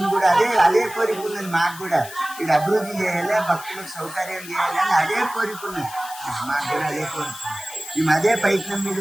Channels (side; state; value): left; noise; hiss, 14 dB below the sound